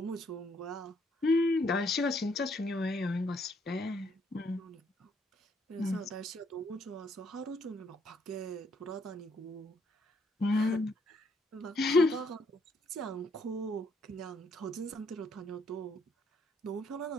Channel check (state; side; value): normal; both; correlation 0.70